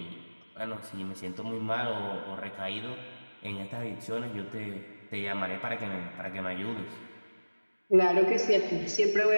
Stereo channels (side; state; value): both; inverted; correlation -1.00